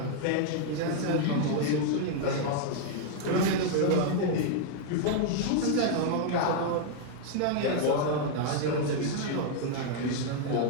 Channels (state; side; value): different; both; correlation 0.00